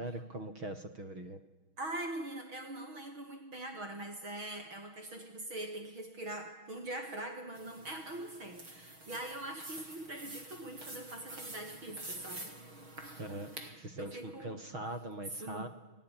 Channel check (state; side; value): late; left; 6.3 ms